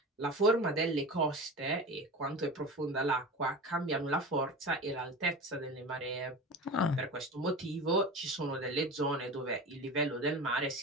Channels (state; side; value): normal; both; correlation 0.30